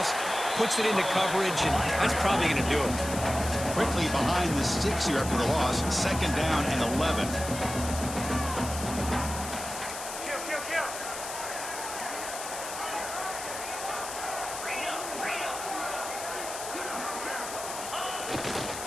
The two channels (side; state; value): left; noise; hiss, 8 dB below the sound